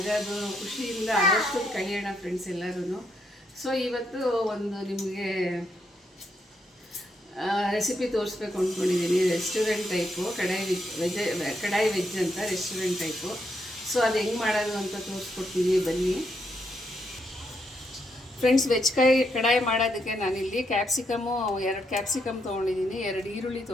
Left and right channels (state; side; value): normal; both; correlation 0.78